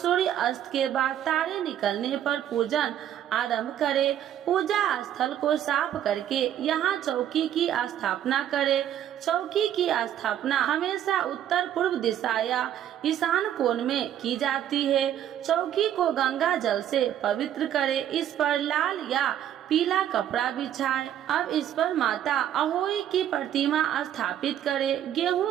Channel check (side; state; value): left; quieter; 10.7 dB